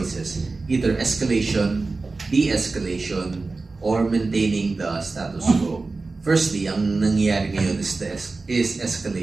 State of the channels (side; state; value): left; quieter; 3.7 dB